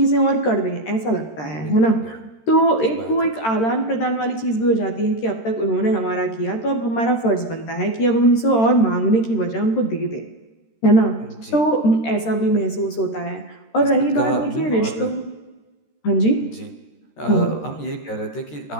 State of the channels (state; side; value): late; right; 13 ms